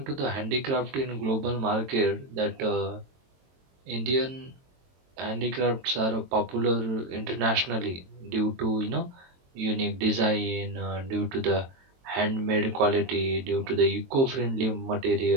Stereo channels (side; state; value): left; late; 22 ms